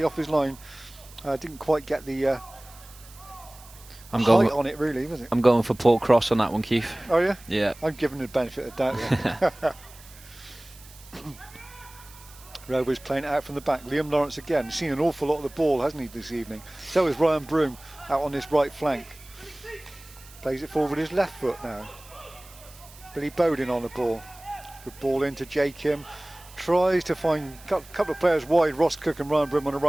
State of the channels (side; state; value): right; noise; hiss, 22 dB below the sound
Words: off his line. Didn't quite get the height on it, really, was it? I'm going for Paul Cross on that one, Keith. Oh, yeah? Yeah. I'm giving the benefit of doubt there. Rovers playing it out from the back. Liam Lawrence again. Seen an awful lot of the ball, hasn't he, this evening? So is Ryan Broom out on his right flank. Plays it forward with his left foot now. Billy Bowden on the ball. Good ball into Jay Kim. Tries to find a couple of players wide, Ross Cook and Ryan Broom on the